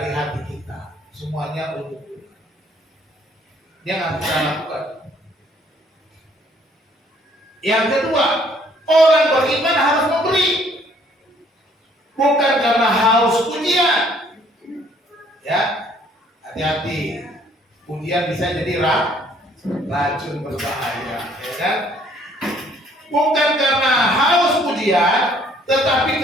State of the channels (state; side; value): normal; both; correlation 0.62